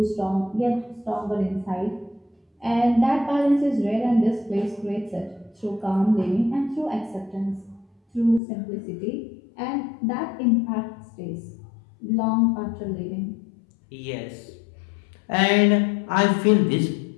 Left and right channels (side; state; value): right; drops out; at 8.4 s